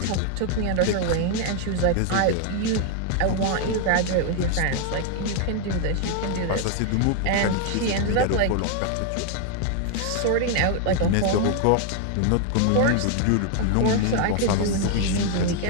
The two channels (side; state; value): both; different; correlation 0.00